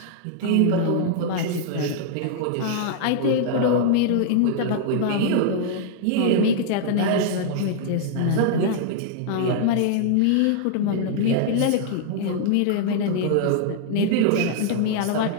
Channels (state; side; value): different; both; correlation -0.01